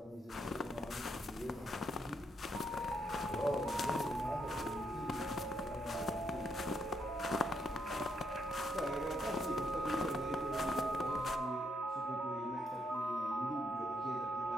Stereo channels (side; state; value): both; normal; correlation 0.76